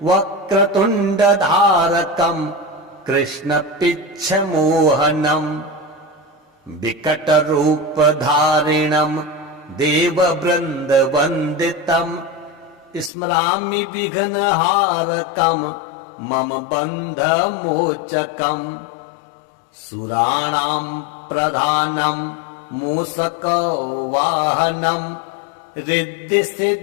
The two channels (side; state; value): right; drops out; at 13.1 s